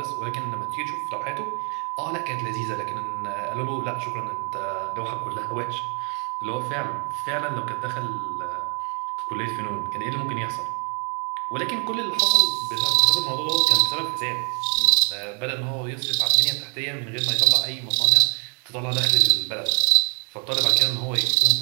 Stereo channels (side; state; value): left; quieter; 38.4 dB